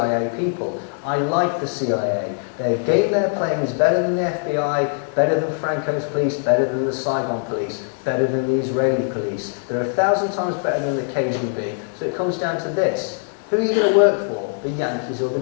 people. I like the CIA. Their game they're playing is better than the FBI, better than Franco's police, better than the Saigon police, better than the Israeli police. They're 1,000 times better than the KGB. So it comes down to this. Who are you going to work for? The Yankees or the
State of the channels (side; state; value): right; silent; 60 dB below the other